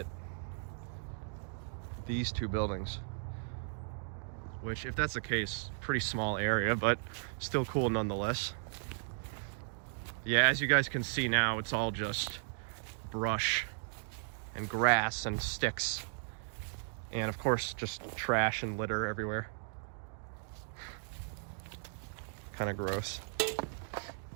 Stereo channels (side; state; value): left; silent; digital silence